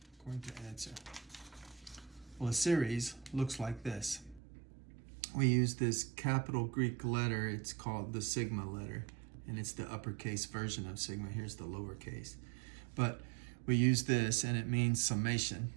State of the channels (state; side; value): drops out; left; at 4.4 s